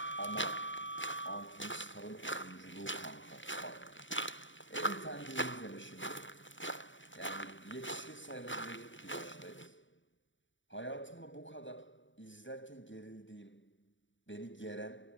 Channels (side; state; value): right; late; 0.55 ms